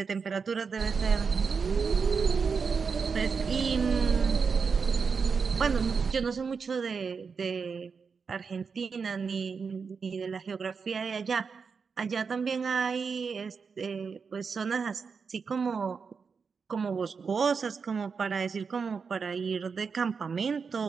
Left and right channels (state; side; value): quieter; left; 5.5 dB